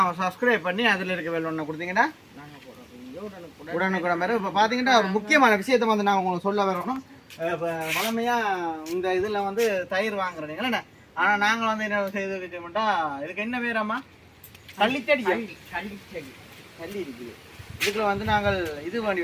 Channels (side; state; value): both; identical; correlation 1.00